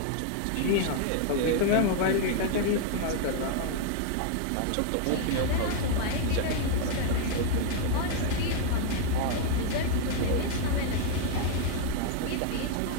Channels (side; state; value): both; different; correlation 0.00